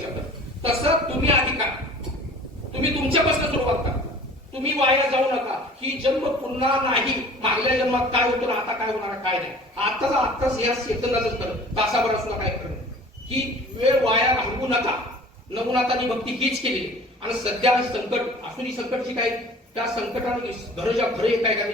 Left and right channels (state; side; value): normal; both; correlation 0.46